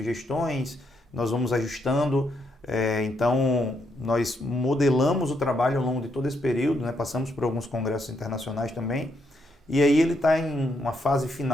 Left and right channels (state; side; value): normal; both; correlation 0.77